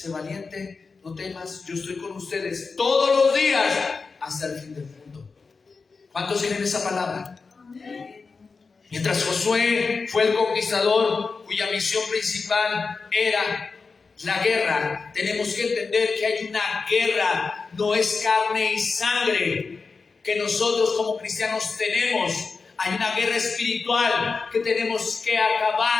valiente, no temas, yo estoy con ustedes todos los días hasta el fin del mundo. ¿Cuántos tienen esa palabra? Amén. Mientras Josué fue el conquistador cuya misión principal era la guerra, tenemos que entender que hay una guerra, no es carne y sangre que nosotros como cristianos tenemos. Hay una guerra espiritual que tenemos que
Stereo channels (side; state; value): right; quieter; 4.6 dB